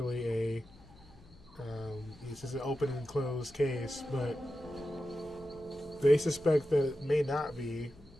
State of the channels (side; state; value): left; noise; hum, 24 dB below the sound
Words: a it's just an open and closed case, but they suspect that it may not be.